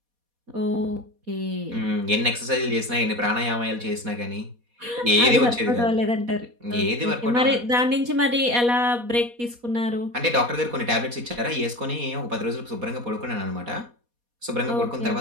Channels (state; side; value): late; left; 4.2 ms